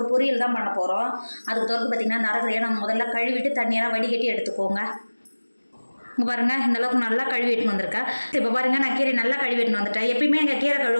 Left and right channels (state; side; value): inverted; both; correlation -1.00